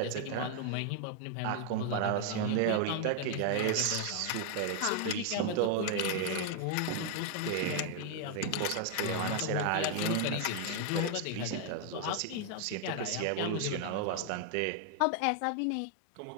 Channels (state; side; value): different; both; correlation 0.00